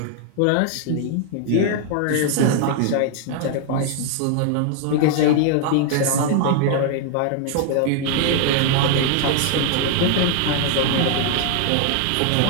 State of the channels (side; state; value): both; different; correlation 0.00